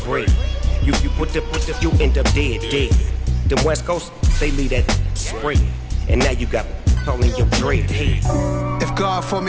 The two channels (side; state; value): both; identical; correlation 1.00